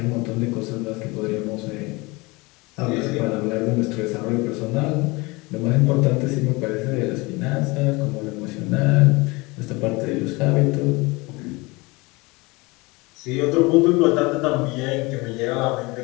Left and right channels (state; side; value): quieter; right; 24.6 dB